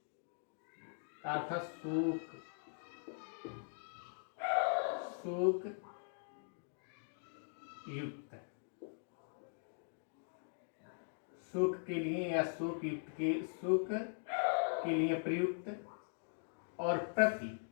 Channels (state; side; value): silent; right; digital silence